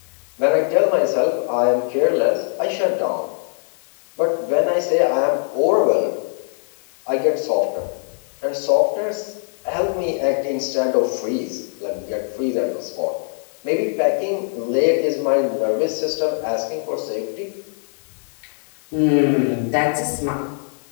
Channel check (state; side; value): silent; right; 64 dB below the other